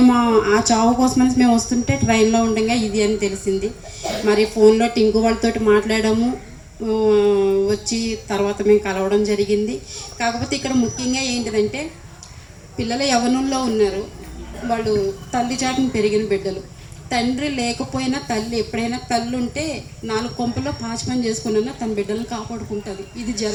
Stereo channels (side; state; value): both; identical; correlation 1.00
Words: ఆ చావు కోసమని మేము వస్తుంటే ట్రైన్లో ఉండగా ఇది అని తెలిసింది. మరి ఫోన్లో టింకు వాళ్ళతోటి మాట్లాడాము. వచ్చి తర్వాత మేము కలవడం జరిగింది. కాకపోతే ఇక్కడ ముఖ్యంగా ఏంటిదంటే, పిల్లలు యవ్వనంలో ఉన్నారు. వాళ్ళు తల్లి చాటును పెరిగిన బిడ్డలు. తండ్రి లేకపోయినా తల్లి, ఎప్పుడైనా తల్లి ఉంటే 4 కొంపల్లో పాచి పని చేసుకున్నా తన బిడ్డలను కాపాడుకుంటుంది. ఇది